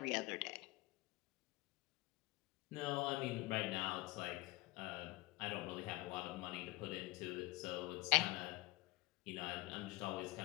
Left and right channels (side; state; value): right; quieter; 22.1 dB